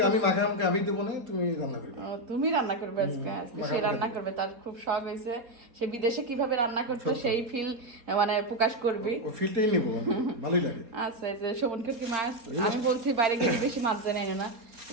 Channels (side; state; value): left; late; 3.7 ms